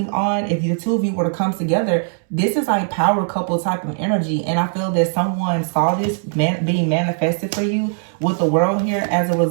on, if the two of you were to come together, this is like power couple type of energy. And I feel that someone saw this being manifested for you with the World here as a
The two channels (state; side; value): silent; left; digital silence